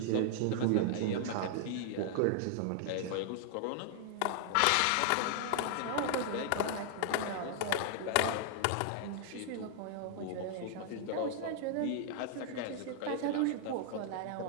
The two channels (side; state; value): both; different; correlation 0.00